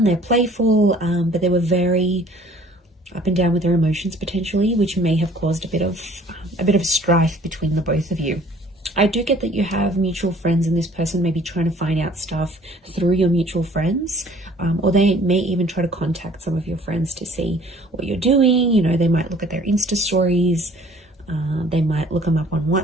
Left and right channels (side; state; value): both; normal; correlation 0.53